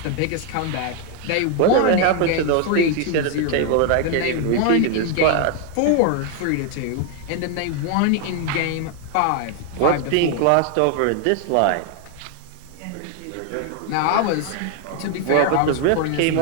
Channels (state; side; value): different; both; correlation 0.01